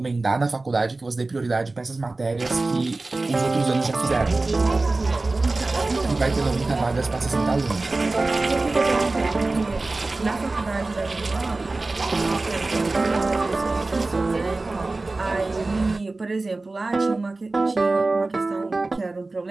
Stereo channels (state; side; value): quieter; left; 3.3 dB